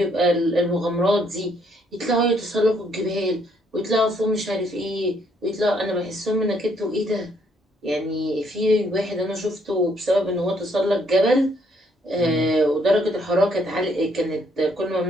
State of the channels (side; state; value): both; normal; correlation 0.69